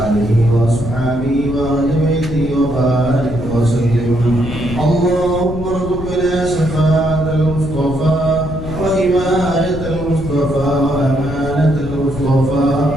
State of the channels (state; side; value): noise; left; rumble, 8 dB below the sound